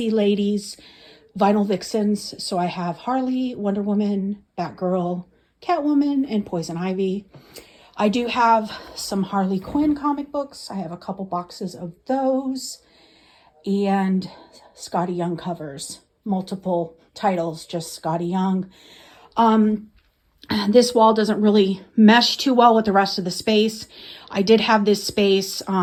Ladies vinyl vixens. So I have Harley, Wonder Woman, Batgirl, Catwoman, and Poison Ivy. I do have some Harley Quinn comic books. I have a couple boxes of those. And Scotty Young covers, multiple titles, just Scotty Young. This wall doesn't really mesh too well with the rest of the space. I did have this space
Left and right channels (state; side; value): identical; both; correlation 1.00